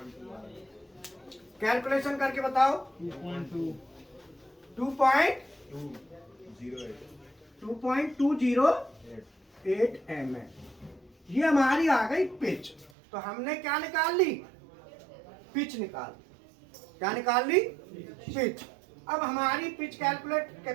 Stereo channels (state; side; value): drops out; left; at 12.9 s